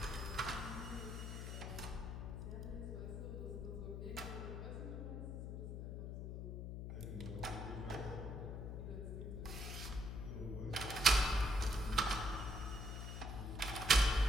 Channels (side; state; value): left; noise; hum, 5 dB below the sound